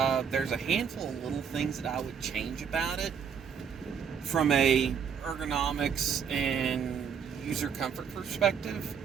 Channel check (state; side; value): quieter; left; 7.2 dB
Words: There's a handful of little things that I would change about it from a ergonomics and user comfort perspective.